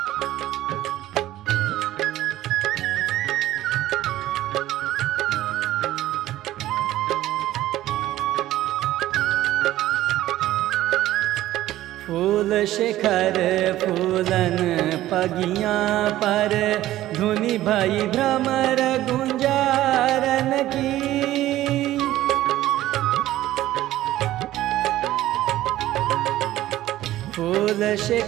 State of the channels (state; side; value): quieter; left; 14.6 dB